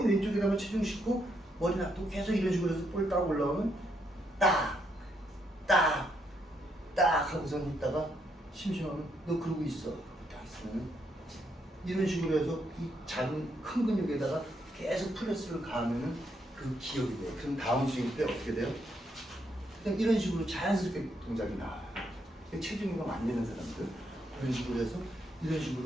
왼쪽에다가 체중 싣고 머리 놔두고 계속 이런 식으로 해서 볼 딱 올라오면 딱 하고선 있다가 심심하면 너 그러고 있어. 딱 있으면 이런 식으로 해서 이 작은 큰 근육에다가 계속 프레스를 가하면은 그 기억이 돼요. 그럼 다음 스윙 때 어떻게 돼요? 그냥 이런 식으로 자연스럽게 동작이 나와요. 체중이가 안 되는 사람들 이런 식으로 해서 이런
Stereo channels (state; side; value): normal; both; correlation 0.76